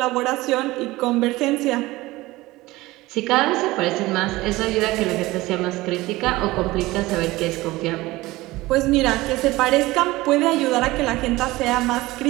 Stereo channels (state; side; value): quieter; left; 19.3 dB